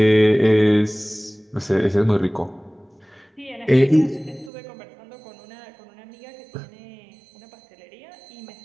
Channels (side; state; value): left; drops out; at 4.5 s